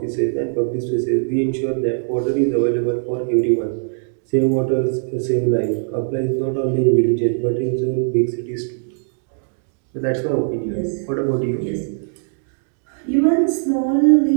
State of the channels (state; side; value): silent; left; digital silence